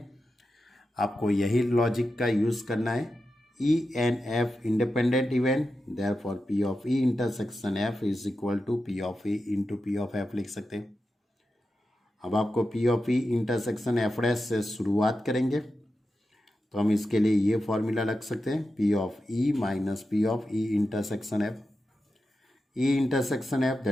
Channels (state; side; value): normal; both; correlation 0.90